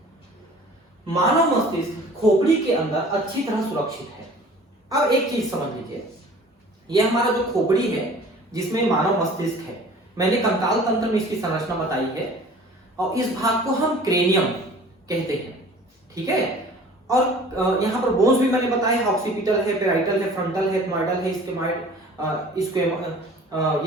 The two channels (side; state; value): both; normal; correlation 0.47